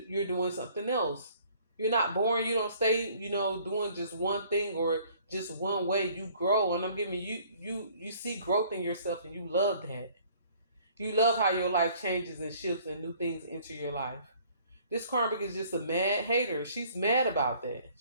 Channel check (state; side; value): inverted; both; correlation -0.57